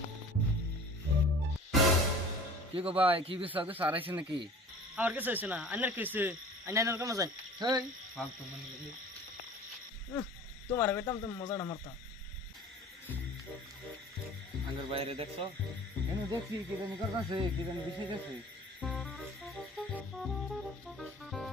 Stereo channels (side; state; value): both; normal; correlation 0.44